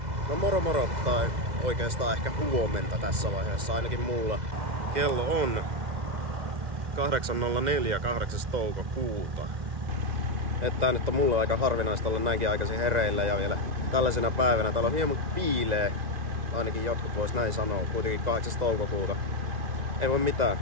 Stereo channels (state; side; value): late; left; 2.0 ms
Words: No moro moro, tai oikeastaan ehkä huomenta tässä vaiheessa, ainakin mulla. Kello on 8.04, 8. toukokuuta. Että nyt on mulle aika harvinaista olla näinkin aikaisin hereillä ja vielä tällaisena päivänä. Täällä on hieman piilee, ainakin jotkut vois näin sanoa, kuitenkin 8. toukokuuta. Ei voi mitään.